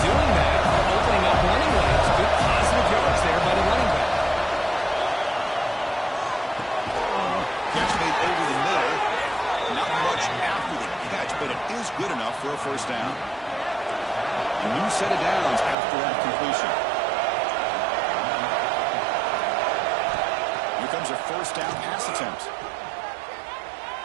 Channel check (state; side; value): drops out; left; at 15.8 s